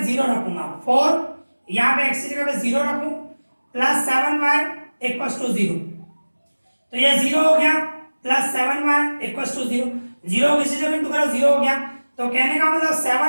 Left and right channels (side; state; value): both; inverted; correlation -1.00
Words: 0 रखूंगा, 4 यहां पे x की जगह पे 0 रखूं, प्लस 7y इक्वल्स टू 0, तो ये 0 हो गया, प्लस 7y इक्वल्स टू 0, 0 किसी जगह इंटू करो 0 हो गया। तो कहने का मतलब